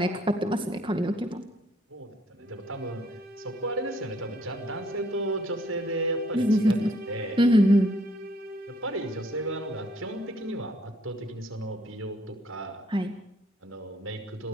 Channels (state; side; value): normal; both; correlation 0.65